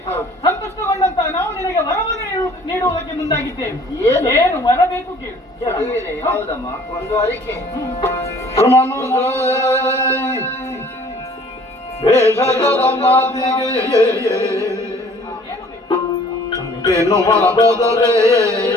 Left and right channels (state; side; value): normal; both; correlation 0.54